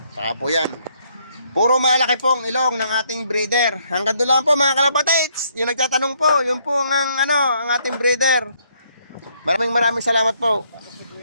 Saka po yan. Puro malaki po ang ilong ng ating breeder. Hanggang doon lang po mga kalapatids. Yung nagtatanong po, yun po ang ating breeder. Maraming salamat po.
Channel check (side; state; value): both; inverted; correlation -0.70